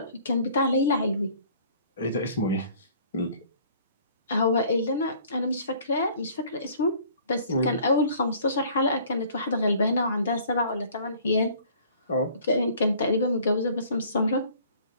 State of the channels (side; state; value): both; inverted; correlation -0.54